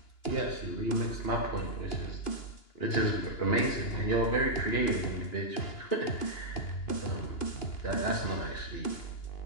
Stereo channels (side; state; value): right; late; 2.9 ms